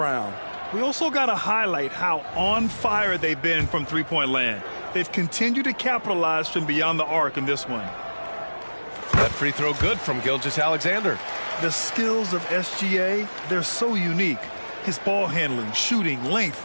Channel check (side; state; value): both; inverted; correlation -1.00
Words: We also got to highlight how on fire they've been from three-point land. They've continued to capitalize from beyond the arc in this one. That free throw good from Gilgeous-Alexander. The skills of SGA, they're so unique. His ball handling, shooting, length.